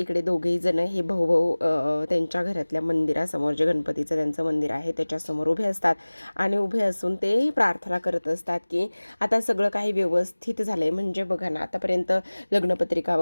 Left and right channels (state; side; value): inverted; both; correlation -1.00